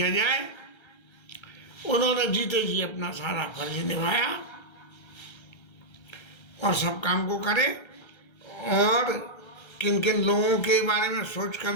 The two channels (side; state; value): right; late; 1.3 ms